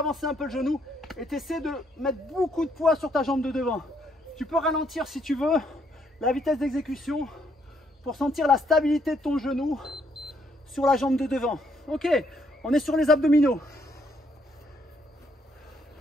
un peu le genou et tu essaies de mettre beaucoup de poids sur ta jambe de devant. Tu peux ralentir si tu veux la vitesse d'exécution pour sentir la stabilité de ton genou sur la jambe de devant. Ok, on est sur les abdominaux.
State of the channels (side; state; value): both; normal; correlation 0.71